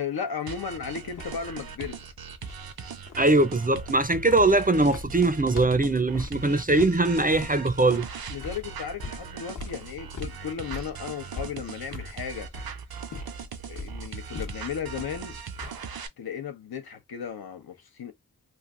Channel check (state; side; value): normal; both; correlation 0.35